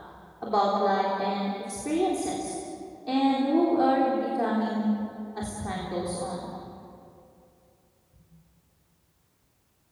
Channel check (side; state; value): both; identical; correlation 1.00